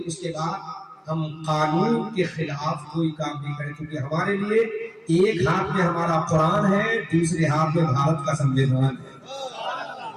اس کے بعد ہم قانون کے خلاف کوئی کام نہیں کریں، کیونکہ ہمارے لیے ایک ہاتھ میں ہمارا قرآن ہے، دوسرے ہاتھ میں بھارت کا سنویدھان ہے،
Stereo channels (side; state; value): both; identical; correlation 1.00